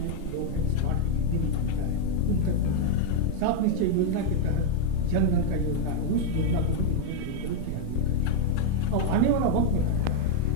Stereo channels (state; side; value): different; both; correlation 0.00